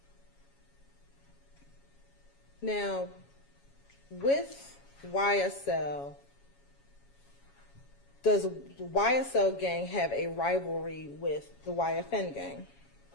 Now, with YSL, does the YSL gang have a rivalry with the YFN gang?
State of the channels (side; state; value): right; late; 7.2 ms